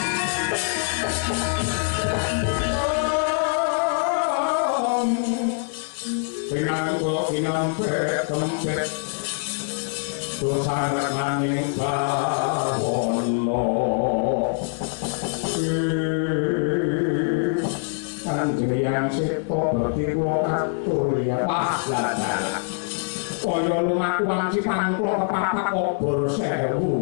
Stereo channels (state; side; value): silent; right; 62 dB below the other